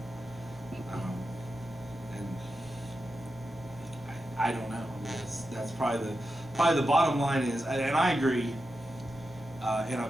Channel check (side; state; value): both; normal; correlation 0.89